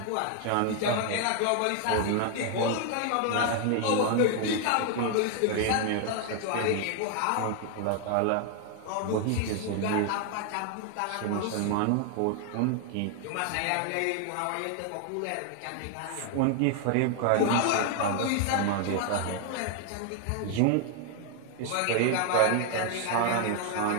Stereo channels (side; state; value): both; different; correlation 0.00